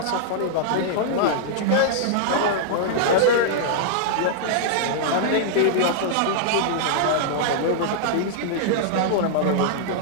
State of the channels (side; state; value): both; different; correlation -0.01